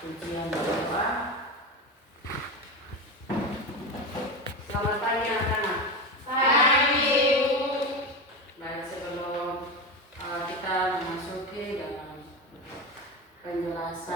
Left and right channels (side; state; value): both; normal; correlation 0.20